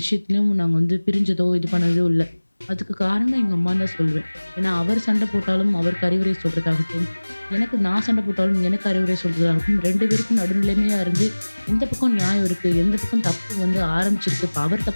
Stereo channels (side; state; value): both; inverted; correlation -1.00